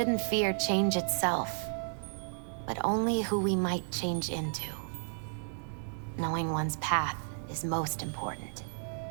fear change itself, but only who we might change into. Knowing one's path is most important.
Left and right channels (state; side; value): silent; left; 56 dB below the other